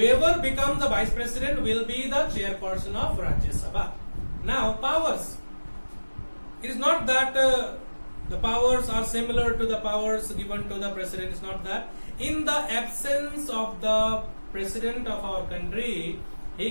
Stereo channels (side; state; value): both; inverted; correlation -1.00